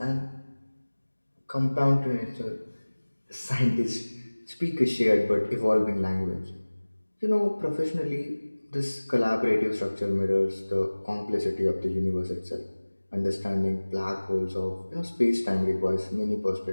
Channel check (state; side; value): inverted; both; correlation -1.00